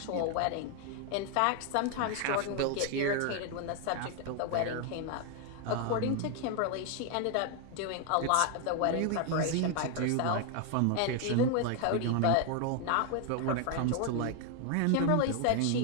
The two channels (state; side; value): different; both; correlation 0.01